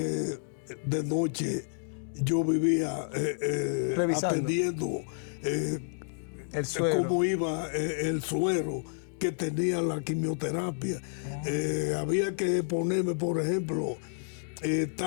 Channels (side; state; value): right; silent; digital silence